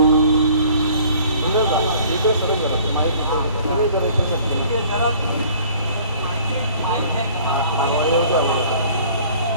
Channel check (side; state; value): both; inverted; correlation -0.53